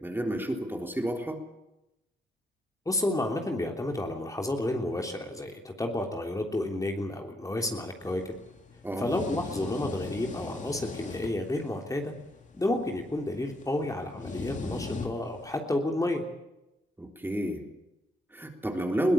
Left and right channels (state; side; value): normal; both; correlation 0.76